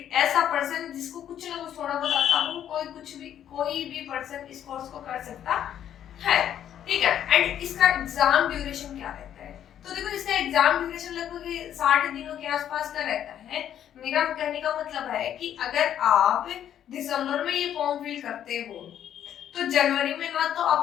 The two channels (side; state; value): right; quieter; 10.2 dB